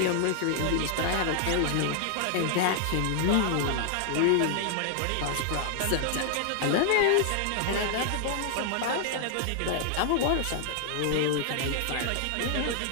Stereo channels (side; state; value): both; different; correlation 0.00